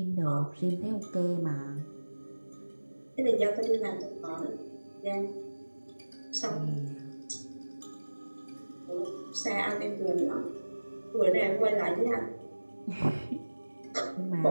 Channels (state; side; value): inverted; both; correlation -1.00